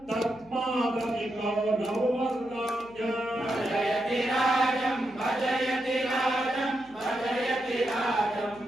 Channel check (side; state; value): right; noise; hum, 28 dB below the sound